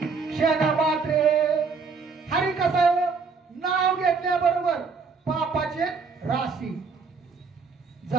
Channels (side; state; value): left; quieter; 4.9 dB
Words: क्षण मात्रे. हरी कसं नाव घेतल्याबरोबर पापाचे राशी